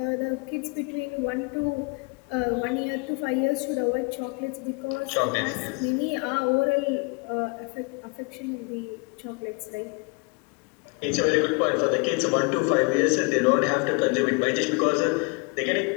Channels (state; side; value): quieter; right; 31.1 dB